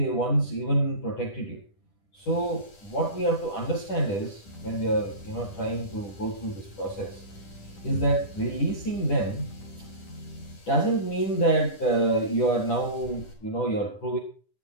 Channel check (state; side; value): late; right; 10 ms